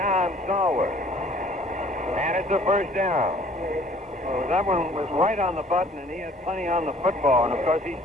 Stallworth. And it's a first down. Well, that one was right on the button, and he had plenty on the football. And, of course, he's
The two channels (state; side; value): normal; both; correlation 0.55